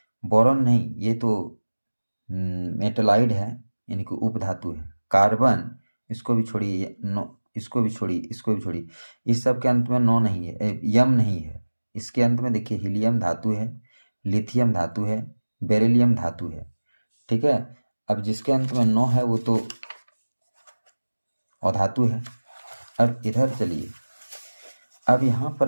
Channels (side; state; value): both; inverted; correlation -1.00